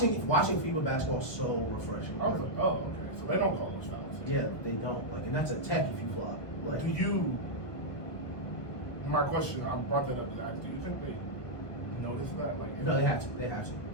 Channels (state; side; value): late; right; 1.4 ms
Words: FIBA basketball is so refreshing. I was like, oh, okay. So they don't call those fouls. Yeah, they don't. Like, and that's a tech if you flop. Like, Do you? My question, I brought that up to ask. Do you think they notice that? Like, no, they have to. They have to.